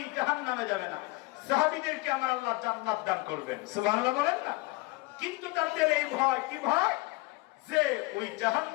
জাহান্নামে যাবে না। সাহাবীদেরকে আমার আল্লাহ জান্নাত দান করবেন, সুবহানাল্লাহ বলেন না। কিন্তু তাদের এই ভয়, কি ভয়? যে ওই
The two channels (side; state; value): right; quieter; 22.8 dB